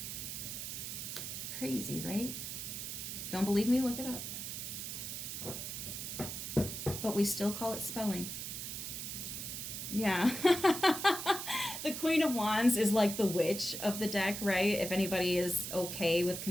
Crazy, right? Don't believe me? Look it up. But we still call it spelling. Yeah. The Queen of Wands is like the witch of the deck, right? If anybody is okay with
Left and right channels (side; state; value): right; noise; hiss, 6 dB below the sound